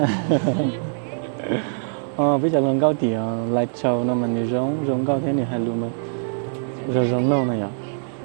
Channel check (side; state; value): left; silent; digital silence